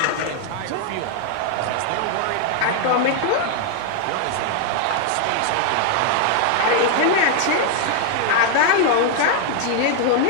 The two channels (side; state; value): both; different; correlation 0.00